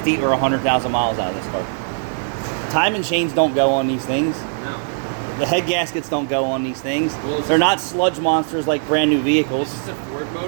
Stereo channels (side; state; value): left; silent; 61 dB below the other